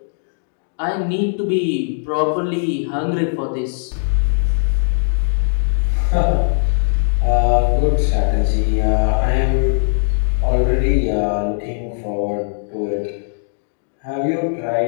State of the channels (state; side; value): silent; right; digital silence